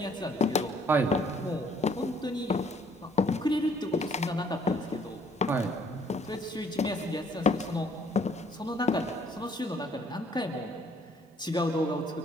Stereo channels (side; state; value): both; normal; correlation 0.62